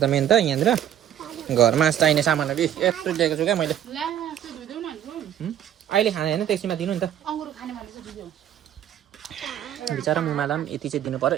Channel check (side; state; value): left; quieter; 10.6 dB